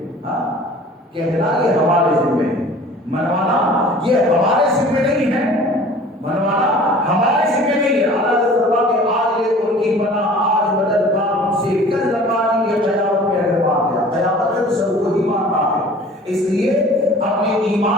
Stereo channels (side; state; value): both; normal; correlation 0.46